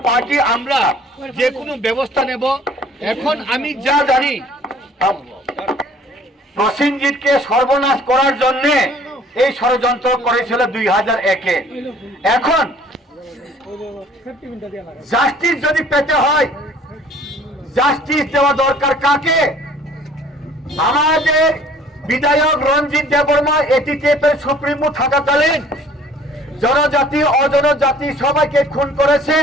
পার্টি আমরা যে কোনো ব্যবস্থা নেব এখন আমি যা জানি প্রসেনজিৎকে সর্বনাশ করার জন্য এই ষড়যন্ত্র করেছিল 2001-এ। এখন জাস্টিস যদি পেতে হয়, জাস্টিস দেওয়া দরকার কাকে? আমাদের বিধায়ক রঞ্জিত দেববর্মা এটিটিএফের সুপ্রিমো থাকাকালীন জনজাতি অজনজাতি সবাইকে খুন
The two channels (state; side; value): normal; both; correlation 0.53